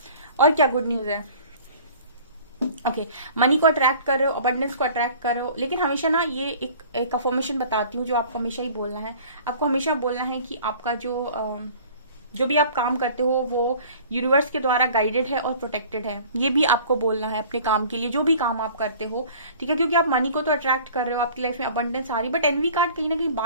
और क्या गुड न्यूज है? ओके, मनी को अट्रैक्ट कर रहे हो, अबंडेंस को attract कर रहे हो, लेकिन हमेशा ना ये एक अफर्मेशन बताती हूँ जो आपको हमेशा ही बोलना है। आपको हमेशा बोलना है कि आपका जो भी आप काम करते हो वो यूनिवर्स के द्वारा गाइडेड है और प्रोटेक्टेड है। ये भी आपको बोलना है अपने काम के लिए, जो भी काम आप करते हो, ठीक है। क्योंकि आप मनी को तो अट्रैक्ट कर रहे हो, आपकी लाइफ में अबंडेंस आ रही, बट एनवी कार्ड कहीं ना कहीं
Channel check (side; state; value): both; inverted; correlation -0.47